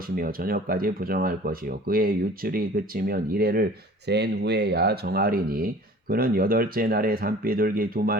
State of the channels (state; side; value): normal; both; correlation 0.46